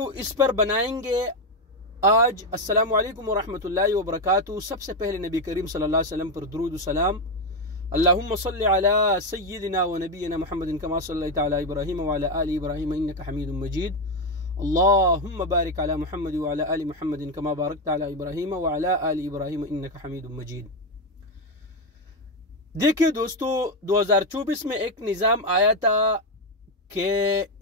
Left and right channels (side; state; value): both; normal; correlation 0.08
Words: इस पर बनाएंगे आज। अस्सलामु अलैकुम वरहमतुल्लाहि वबरकातुहू। सबसे पहले नबी करीम सल्लल्लाहु अलैहि वसल्लम पर दुरूद सलाम। अल्लाहुम्मा सल्लि अला सय्यिदिना व नबीना मुहम्मदिन कमा सल्लैता अला इब्राहीम व अला आलि इब्राहीम इन्नका हमीदुम मजीद। अल्लाहुम्मा बारिक अला मुहम्मद व अला आलि मुहम्मदिन कमा बारकता अला इब्राहीम व अला आलि इब्राहीम इन्नका हमीदुम मजीद। देखिए दोस्तों, 2024 में एक निज़ाम आया था कि